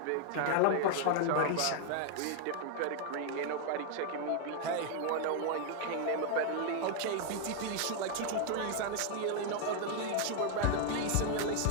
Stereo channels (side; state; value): both; different; correlation 0.00